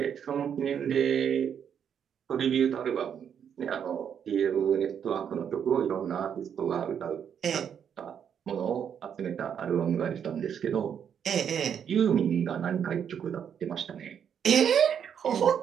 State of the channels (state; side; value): quieter; left; 8.2 dB